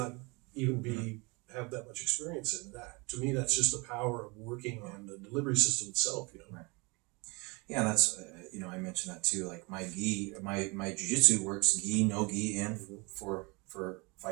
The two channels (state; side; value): quieter; left; 27.7 dB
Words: even have that much experience in. That, to me, that's just the power of working on the delivery system itself, Right. Yeah, that's, I mentioned that too. Like my jiu-jitsu works gi, no gi, and for